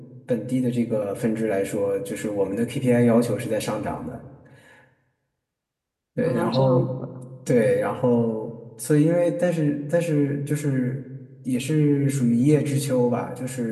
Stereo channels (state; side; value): identical; both; correlation 1.00